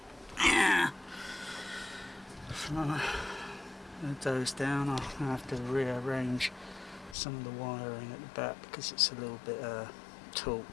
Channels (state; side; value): drops out; right; at 7.2 s